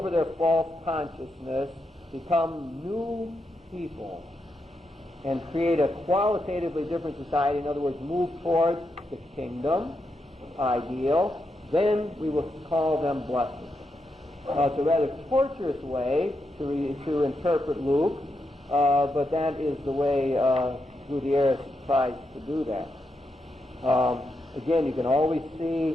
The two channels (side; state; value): both; normal; correlation 0.84